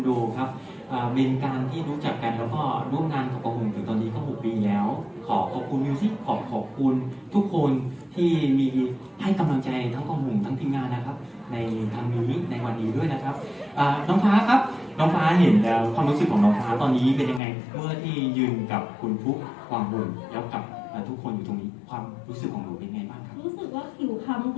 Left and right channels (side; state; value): right; drops out; at 17.4 s